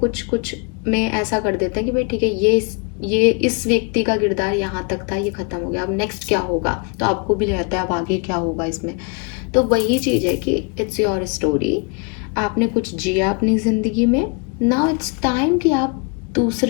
में ऐसा कर देते हैं कि भाई ठीक है, ये इस व्यक्ति का किरदार यहाँ तक था, ये ख़त्म हो गया, अब नेक्स्ट क्या होगा, तो आपको भी रहता है अब आगे क्या होगा इसमें। तो वही चीज़ है कि इट्स योर स्टोरी, आपने कुछ जिया अपनी ज़िंदगी में, नाउ इट्स टाइम कि आप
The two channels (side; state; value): right; quieter; 32.9 dB